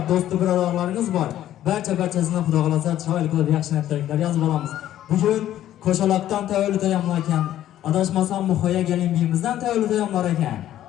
do'st birodarlarınız var. Barchasini Xudo xolasa chiroyli qilib yaxshi tilaklar yozib olamiz. Bugun qo'shalaqdan tavallud ayomlar ekan, adashmasam Muhoya gelin biyimizdan tavallud ayomlar ekan.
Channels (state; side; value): quieter; right; 12.4 dB